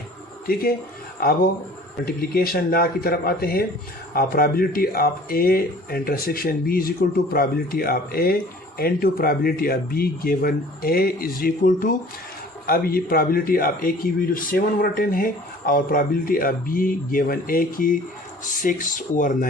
ठीक है, अब मल्टीप्लिकेशन लॉ की तरफ आते हैं। Probability of A intersection B is equal to probability of A into probability of B given A is equal to, अब ये प्रोबेबिलिटी ऑफ ए की वैल्यू 7/10 है और प्रोबेबिलिटी ऑफ बी गिवन ए की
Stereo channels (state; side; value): normal; both; correlation 0.48